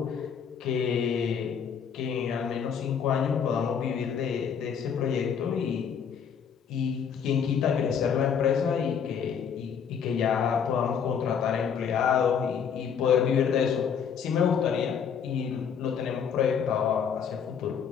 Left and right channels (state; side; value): quieter; right; 7.3 dB